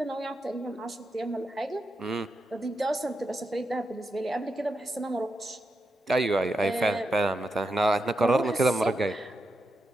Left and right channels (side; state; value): both; normal; correlation 0.86